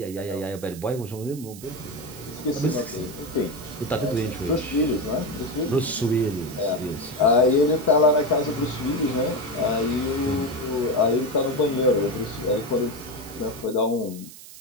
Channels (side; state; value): right; noise; hiss, 17 dB below the sound